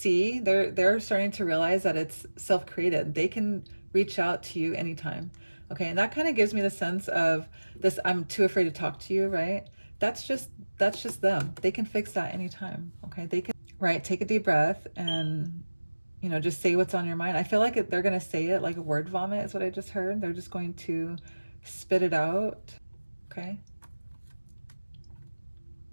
they're starting to realize that it's self-created. They can reach out to you anytime. Okay. And that kind of gives me the sense of this, I'm too afraid to talk to you, right? That's just them. They can fix that anytime. Okay. They can, right. Take a deep breath and, you know, just say what's on your mind. I feel like they're going to say it like a word vomit is what I just heard. They're just going to spit it out. Okay.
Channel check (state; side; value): inverted; both; correlation -1.00